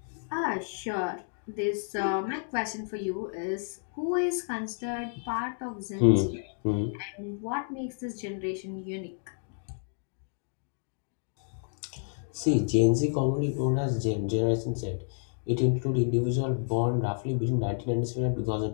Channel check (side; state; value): right; silent; digital silence